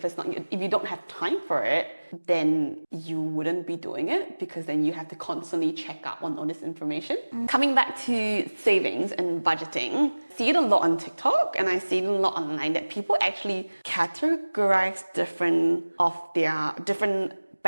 don't have time for it, then you wouldn't be doing it because then you have to constantly check up on all this information. Coming back to savings and budgeting, I see it a lot on TikTok and I see it a lot online that people actually categorize different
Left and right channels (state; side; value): inverted; both; correlation -1.00